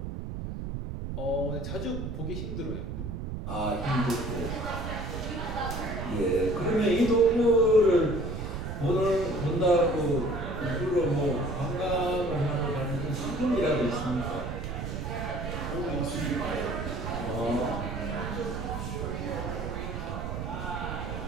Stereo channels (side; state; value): right; noise; rumble, 5 dB below the sound